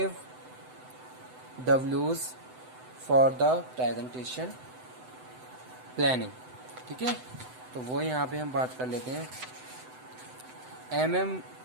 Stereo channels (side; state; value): left; late; 7.9 ms